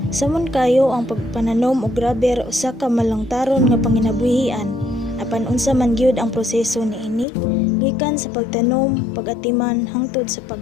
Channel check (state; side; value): drops out; right; at 7.2 s